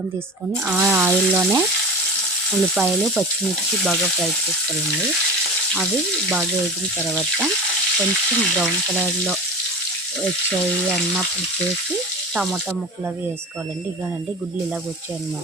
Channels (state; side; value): normal; both; correlation 0.31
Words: తీసుకొని ఆ ఆయిల్లోనే ఉల్లిపాయలు, పచ్చిమిర్చి బాగా ఫ్రై చేసుకోవాలండి. అవి బాగా వేగిన తర్వాత కొంచెం బ్రౌన్ కలర్లో వచ్చాయి అన్నప్పుడు చేసి టమాటా ముక్కలు అవి వేసుకోవాలండి. ఇగానండి గుడ్లు ఇలాగ